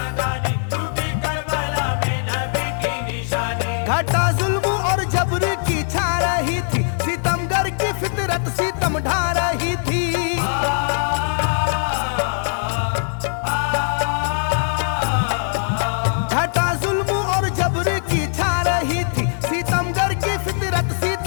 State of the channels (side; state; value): right; silent; digital silence